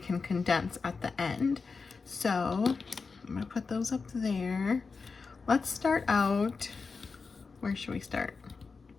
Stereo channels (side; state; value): right; quieter; 4.7 dB